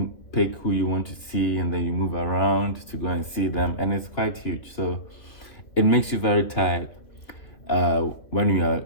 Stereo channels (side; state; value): right; late; 3.0 ms